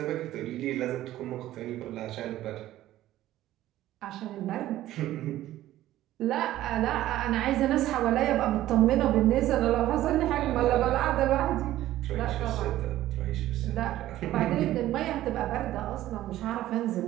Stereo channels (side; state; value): left; quieter; 14.3 dB